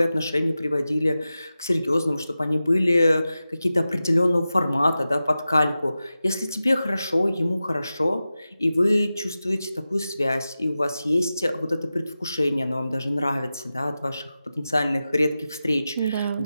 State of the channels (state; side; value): inverted; both; correlation -0.94